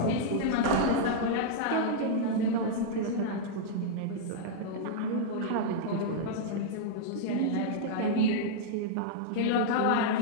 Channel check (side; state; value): both; different; correlation -0.02